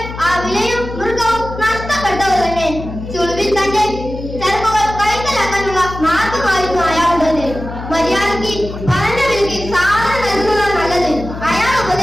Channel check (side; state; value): left; noise; hum, 10 dB below the sound